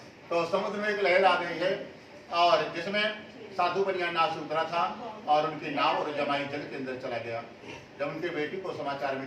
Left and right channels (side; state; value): both; identical; correlation 1.00